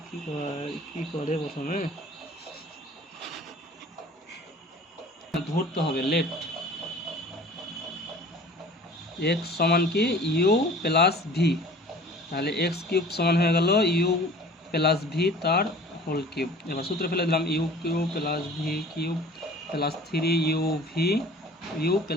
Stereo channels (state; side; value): normal; both; correlation 0.46